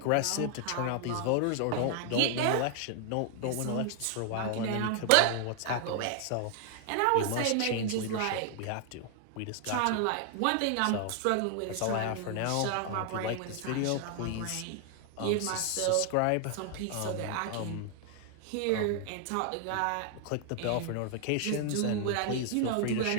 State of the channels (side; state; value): both; different; correlation 0.00